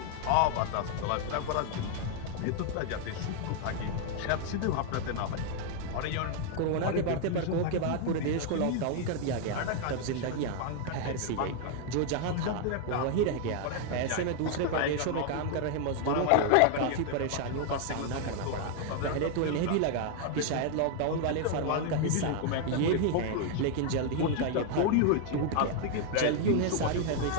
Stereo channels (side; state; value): both; different; correlation 0.00